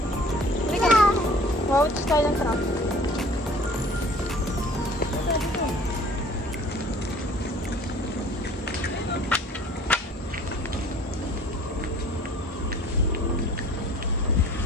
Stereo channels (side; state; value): both; normal; correlation 0.50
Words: Wow, it's style ng truck.